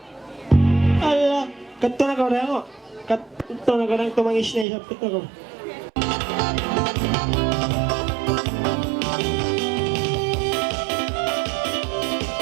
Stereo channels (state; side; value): drops out; left; at 4.7 s